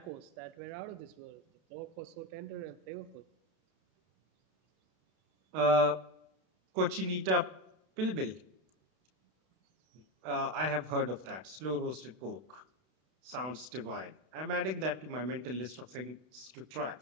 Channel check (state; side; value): late; left; 32 ms